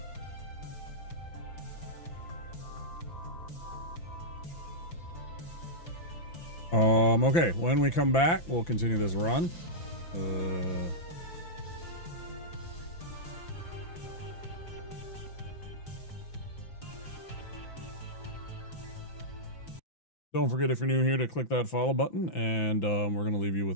Okay, when we come back, we'll continue this run. Don't forget, if you're new here, to click that follow button, and we're going to leave you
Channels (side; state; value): right; late; 5.9 ms